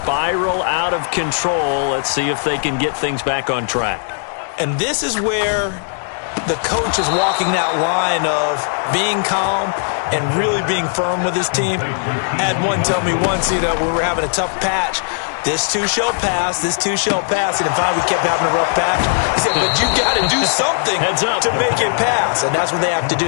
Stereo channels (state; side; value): silent; right; digital silence